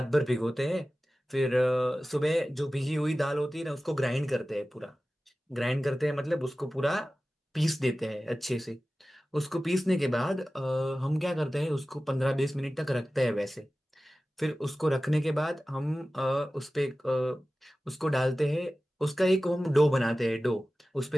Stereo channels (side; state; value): both; normal; correlation 0.96